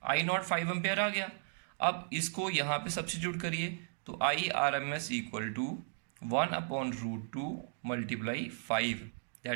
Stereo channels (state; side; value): silent; left; digital silence